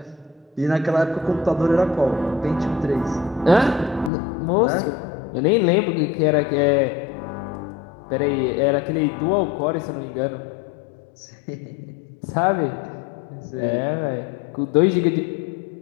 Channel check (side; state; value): right; drops out; at 4.1 s